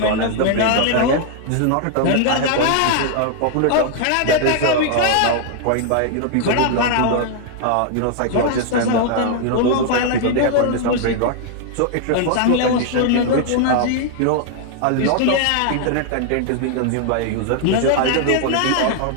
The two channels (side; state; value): both; different; correlation 0.00